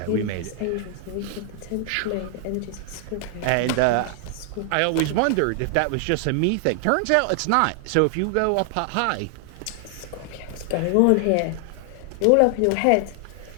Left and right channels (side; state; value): both; different; correlation 0.00